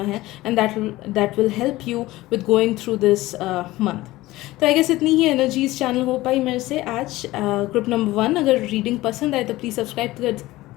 है and that will help you with going through this month. तो आई गेस इतनी ही एनर्जीज चैनल हो पाई मेरे से आज. ग्रुप नंबर 1, अगर रीडिंग पसंद आए तो प्लीज़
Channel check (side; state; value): right; quieter; 17.9 dB